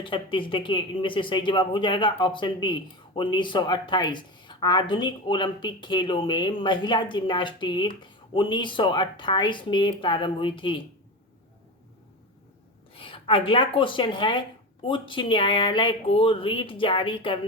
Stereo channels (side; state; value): both; normal; correlation 0.22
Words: देखिए इनमें से सही जवाब हो जाएगा ऑप्शन बी 1928। आधुनिक ओलंपिक खेलों में महिला जिम्नास्टिक 1928 में प्रारंभ हुई थी। अगला क्वेश्चन है उच्च न्यायालय को रीट जारी